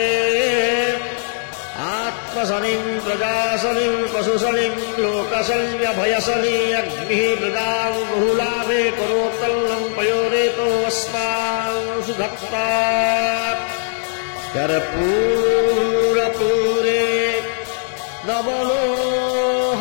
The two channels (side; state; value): right; silent; 56 dB below the other